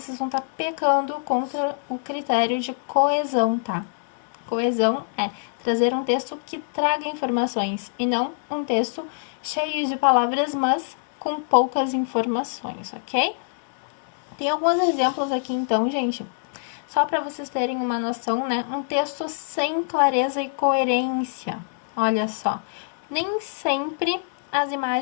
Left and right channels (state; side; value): silent; right; digital silence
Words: vão estar pecando contra o critério de coesão, tá? Coesão é trazer um texto que traga informações e não um texto cheio de palavras, mas com poucas informações, ok? Tem alguns exemplos aqui, então, gente. Só para vocês terem uma noção, né? Um texto sem clareza e coerência. Olha só. Nem sempre as